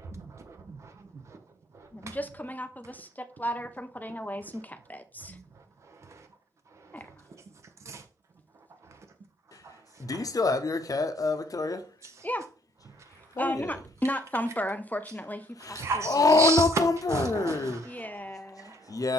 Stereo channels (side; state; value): both; normal; correlation 0.67